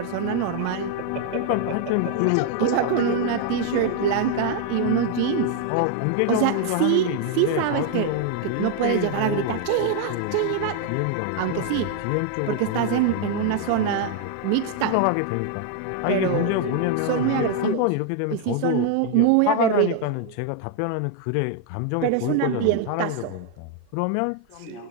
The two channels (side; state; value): both; different; correlation 0.00